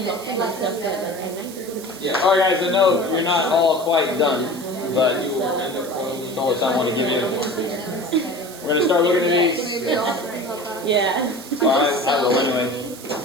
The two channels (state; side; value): noise; right; hiss, 16 dB below the sound